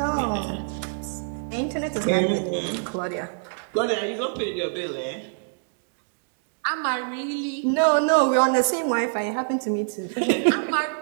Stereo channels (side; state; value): left; silent; digital silence